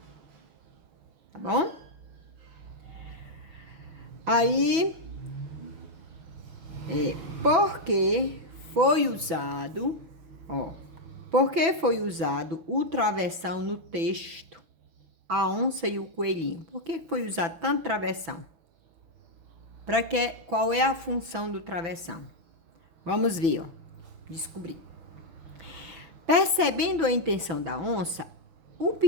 Tá bom? Aí, porque foi usado, ó, porque foi usado o travessão no texto, a onça e o coelhinho? Por que foi usado tanto travessão? Para que, qual é a função do travessão? Vamos ver, ó, descobrir. Percebendo a intenção da onça, o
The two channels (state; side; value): late; left; 6.1 ms